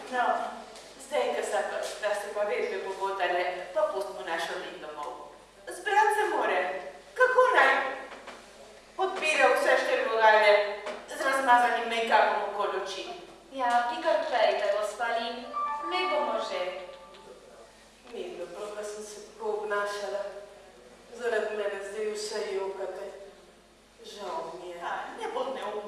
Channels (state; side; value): identical; both; correlation 1.00